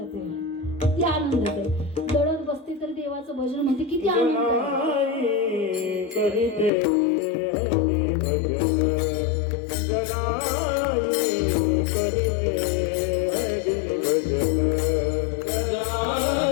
आहे, किती आनंदात आहे. दळत बसते तर देवाचं भजन म्हणते, किती आनंद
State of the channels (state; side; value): drops out; right; at 6.7 s